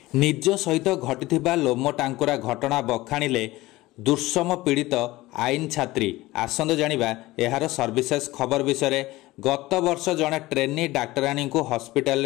निज सहित घटिथिबा लोम टांकुरा घटना बखाणिले दुर्सम पीड़ित आईन छात्री। आसंद जानिबा एहार सर्विसेस खबर विषय। गत वर्ष जड़े ट्रेनी डाक्तराणी को हॉस्पिटल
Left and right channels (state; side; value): quieter; right; 18.8 dB